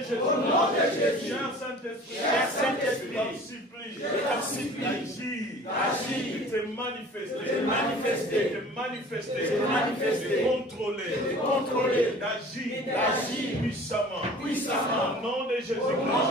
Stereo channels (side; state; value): both; normal; correlation 0.45